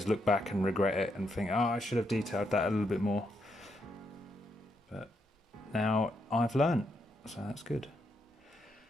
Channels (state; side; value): normal; both; correlation 0.79